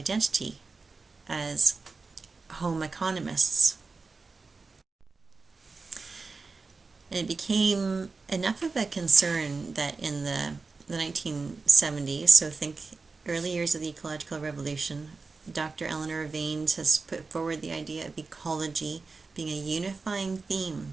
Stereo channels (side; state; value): left; quieter; 4.2 dB